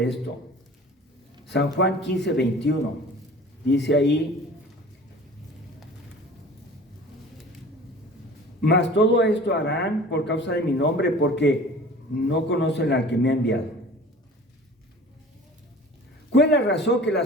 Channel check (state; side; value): normal; both; correlation 0.43